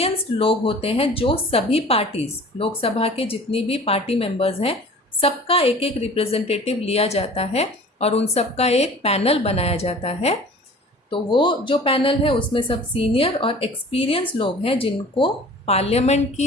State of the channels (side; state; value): both; normal; correlation 0.44